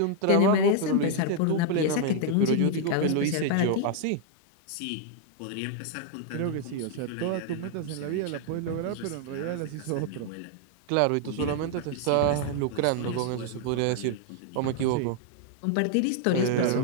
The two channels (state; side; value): different; both; correlation 0.00